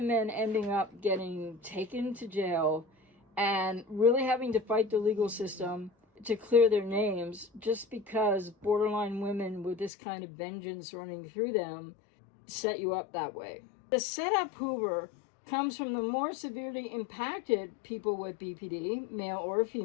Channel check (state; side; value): drops out; right; at 9.9 s